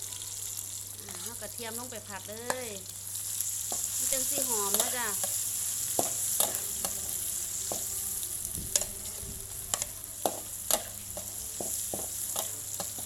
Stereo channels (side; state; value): both; identical; correlation 1.00